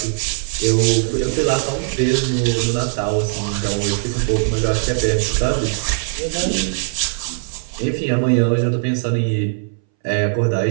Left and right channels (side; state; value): left; silent; 63 dB below the other